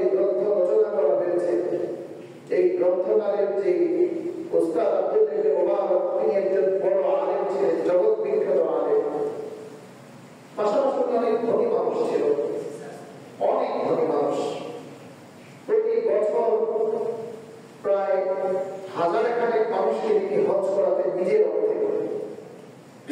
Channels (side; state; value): both; identical; correlation 1.00